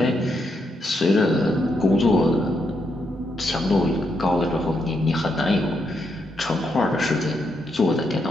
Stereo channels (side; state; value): both; normal; correlation 0.80